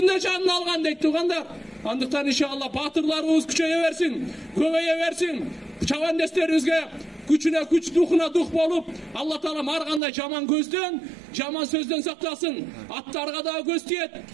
canını algan deyip tuğandar. Andıktan inşallah batırlarımız küçeye versin, köveye versin. Çavan desterimizge güçüne güç, duhuna duh bolup Allah Taala'm arganda jaman gözden, jaman sözden saklasın. Attarga da göz tiyet,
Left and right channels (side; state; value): left; drops out; at 10.0 s